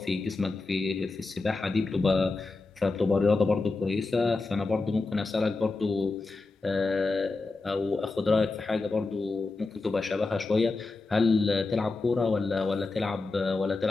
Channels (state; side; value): quieter; right; 3.6 dB